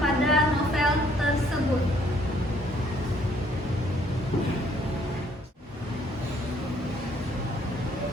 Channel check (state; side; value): normal; both; correlation 0.64